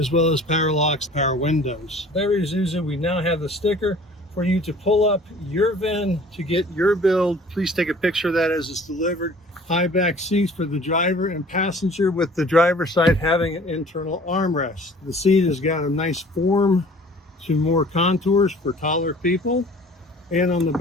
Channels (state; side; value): normal; both; correlation 0.49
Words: well as power locks, power windows. Very Isuzu, we now have the sticker for you to pull up your VIN to get your build. Please take a picture of that as it's delivered. High back seats for the driver and passenger, with the driver's side having an internal armrest. The seat has got a nice form to more contours for taller people. And on the